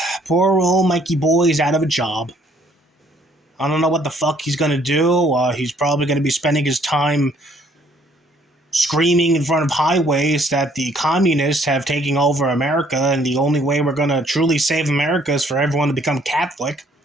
poor old Mikey boy is out of a job. I don't know what the fuck he's gonna do. He's probably gonna be spending his time screaming in front of highways that the communists have taken over America, and the only way we're gonna truly save America is for everyone to become Catholic.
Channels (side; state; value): both; normal; correlation 0.63